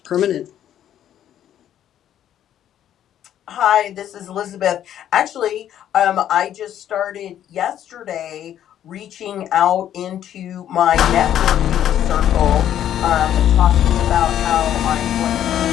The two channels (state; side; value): quieter; right; 10.8 dB